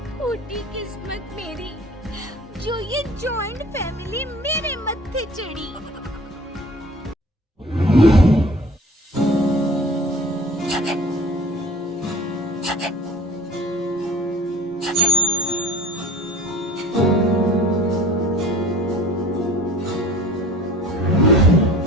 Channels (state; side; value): normal; both; correlation 0.44